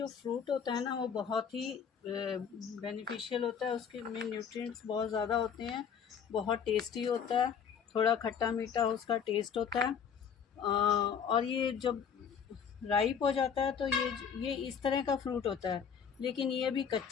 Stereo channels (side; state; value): right; quieter; 7.2 dB